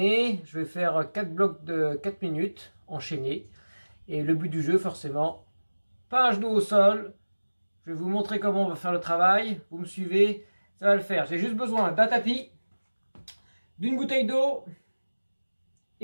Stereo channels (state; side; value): inverted; both; correlation -1.00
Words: je vais faire 4 blocs de 4 minutes enchaînés. Et le but du jeu forcément, pas un genou au sol, je vais vous montrer comment on va faire le travail, vous me suivez, ça va le faire. J'ai juste besoin d'un tapis, d'une bouteille d'eau